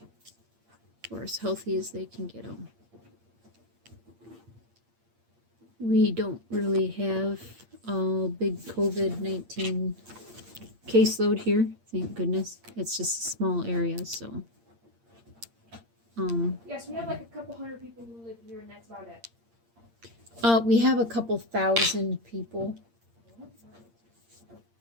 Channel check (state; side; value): late; left; 8.7 ms